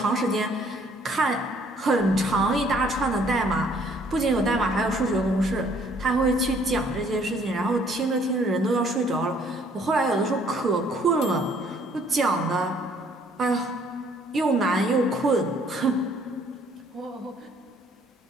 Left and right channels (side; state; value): both; normal; correlation 0.61